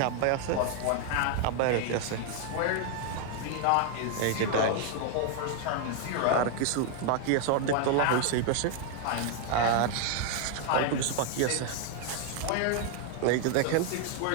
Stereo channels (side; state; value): both; different; correlation 0.00